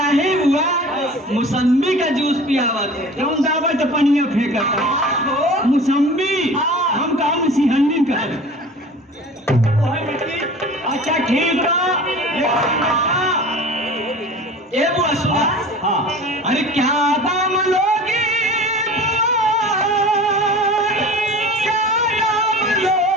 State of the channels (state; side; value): normal; both; correlation 0.40